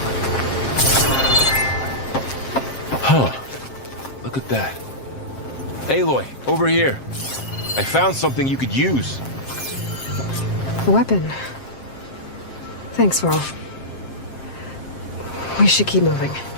Huh. Look at that. Aloy, over here. I found something you could use. A weapon. Thanks, Varl. We should keep moving.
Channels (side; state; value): right; late; 7.6 ms